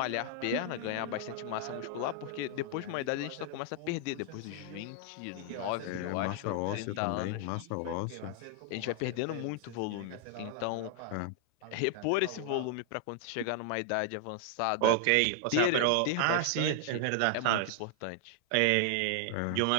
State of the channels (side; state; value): both; different; correlation 0.00